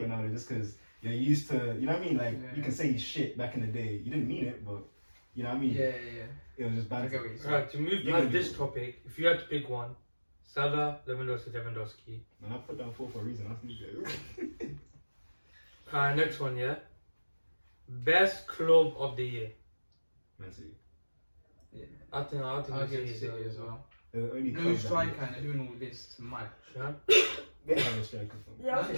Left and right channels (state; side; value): inverted; both; correlation -1.00